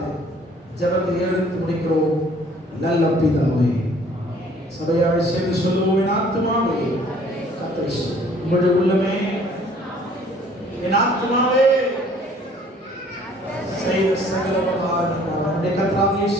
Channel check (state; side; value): normal; both; correlation 0.56